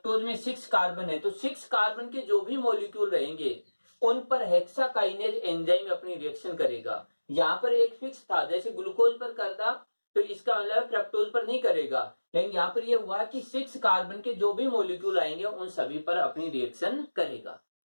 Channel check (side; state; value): both; inverted; correlation -1.00